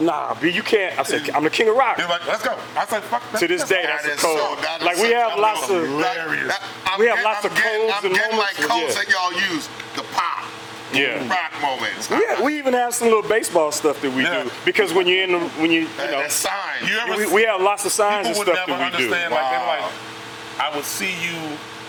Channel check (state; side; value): identical; both; correlation 1.00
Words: B, you can't. I said, I'm the king of rock. He's like, let's go. I said, fuck that. To this day, that's That a is code. that is Like we such have a lots of. hilarious. We have lots of codes I'm and getting like moments, codes that y'all use. The pop. Yeah. Rock moments. We even have some little baseball stuff that we Yeah. do because when you're in the, you know, That sign. You ever we have lots of signs and people would stuff never that we do. understand. Like they were Wow. like, I would see you,